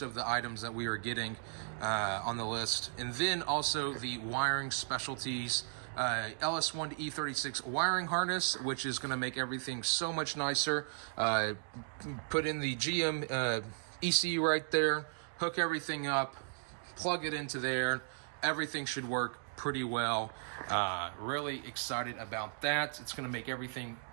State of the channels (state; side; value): silent; left; digital silence